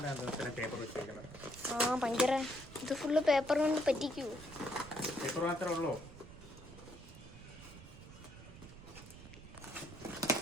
പേപ്പർ വെച്ചിരിക്കുന്നത്. ഭയങ്കര ഇത് ഫുള്ള് പേപ്പർ കൊണ്ട് പറ്റിക്കൂ. പേപ്പർ മാത്രമേ ഉള്ളൂ.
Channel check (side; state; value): right; noise; rumble, 16 dB below the sound